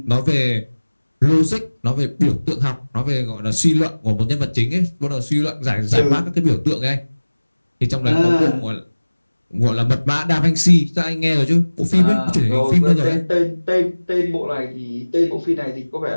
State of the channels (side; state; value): both; inverted; correlation -1.00